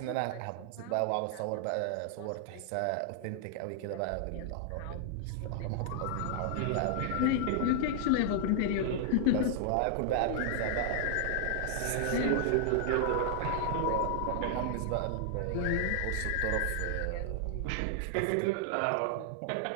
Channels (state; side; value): different; both; correlation 0.00